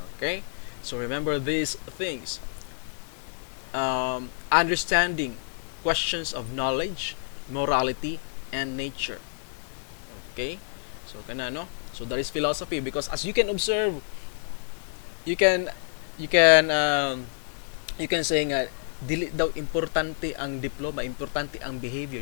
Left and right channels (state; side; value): silent; right; digital silence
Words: Okay? So remember these things. Understanding questions of knowledge, morality, and nature. Okay? So So that is philosophy, because as you can observe, you can you can um, you can say nga dili daw importante ang diploma, importante ang